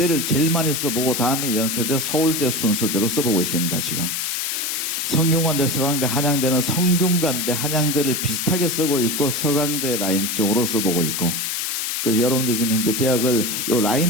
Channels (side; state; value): left; noise; hiss, 1 dB below the sound